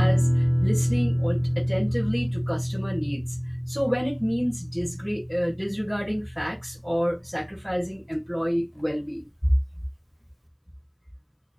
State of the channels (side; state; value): both; identical; correlation 1.00